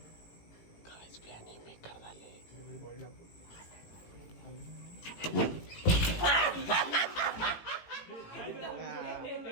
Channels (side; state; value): right; late; 18 ms